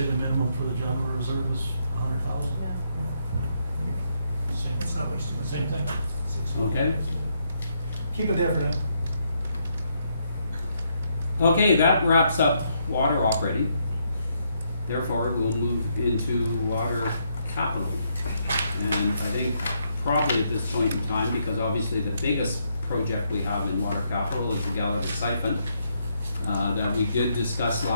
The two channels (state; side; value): inverted; both; correlation -0.76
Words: the minimum for the general reserve is 100,000. Yeah. Same, Let's not waste too much. same thing. 6 Okay. Keep it there for now. Okay, that wraps up water operating. Therefore, we'll move into water capital. And I think probably at this point in time, because obviously the biggest project we have in water capital is the Gallagher siphon, that we did discuss